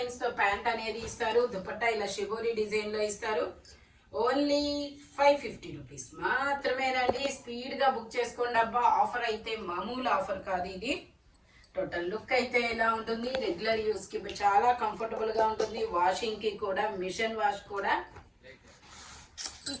తో ప్యాంట్ అనేది ఇస్తారు. దుపట్టా ఇలా షిబోరి డిజైన్ లో ఇస్తారు. ఓన్లీ 550 రూపీస్ మాత్రమేనండి. స్పీడ్ గా బుక్ చేసుకోండి అబ్బా. ఆఫర్ అయితే మామూలు ఆఫర్ కాదు ఇది. టోటల్ లుక్ అయితే ఇలా ఉంటుంది. రెగ్యులర్ యూస్ కి చాలా కంఫర్టబుల్ గా ఉంటుంది. వాషింగ్ కి కూడా, మిషన్ వాష్ కూడా.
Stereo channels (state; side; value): identical; both; correlation 1.00